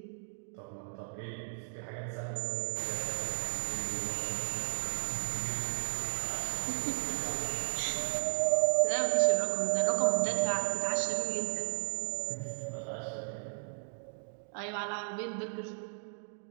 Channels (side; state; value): left; silent; digital silence